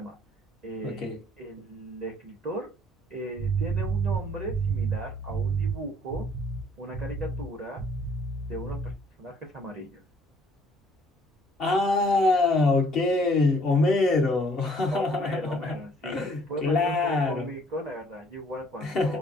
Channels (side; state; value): both; normal; correlation 0.61